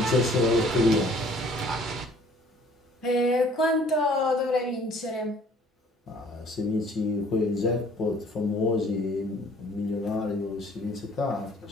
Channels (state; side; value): normal; both; correlation 0.56